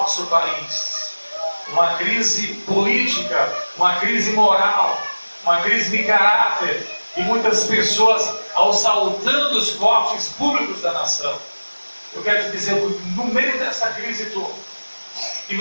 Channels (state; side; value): inverted; both; correlation -1.00